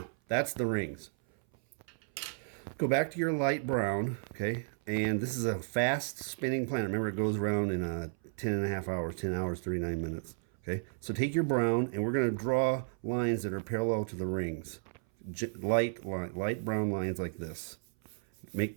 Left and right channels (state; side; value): silent; left; 56 dB below the other